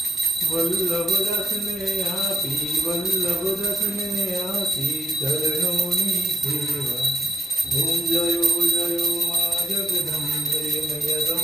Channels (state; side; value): normal; both; correlation 0.74